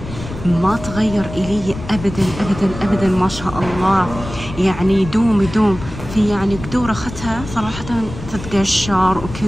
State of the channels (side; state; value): left; noise; rumble, 11 dB below the sound